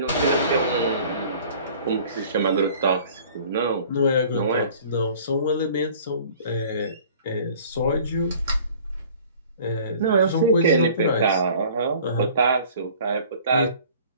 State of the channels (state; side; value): inverted; both; correlation -0.49